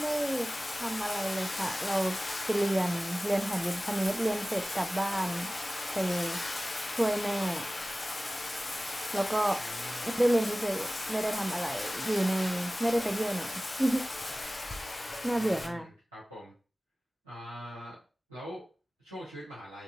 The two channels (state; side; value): normal; both; correlation 0.97